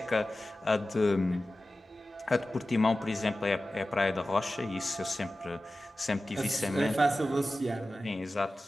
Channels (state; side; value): normal; both; correlation 0.95